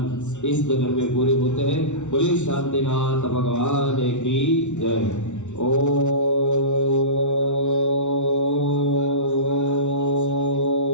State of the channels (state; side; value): late; right; 0.83 ms